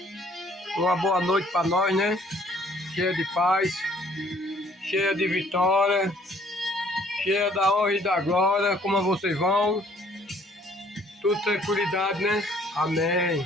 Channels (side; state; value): both; normal; correlation 0.60